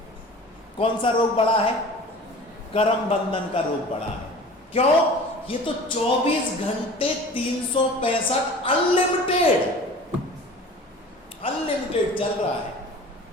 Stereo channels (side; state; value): both; normal; correlation 0.41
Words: कौन सा रोग बड़ा है? कर्म बंधन का रोग बड़ा है। क्यों? ये तो 24 घंटे 365 अनलिमिटेड चल रहा है।